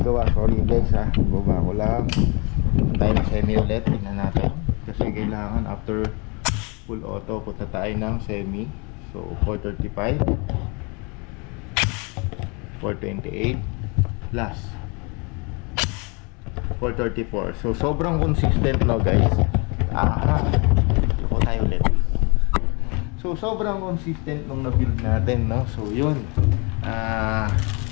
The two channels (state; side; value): quieter; right; 30.9 dB